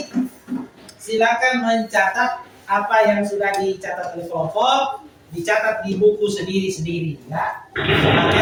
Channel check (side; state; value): both; identical; correlation 1.00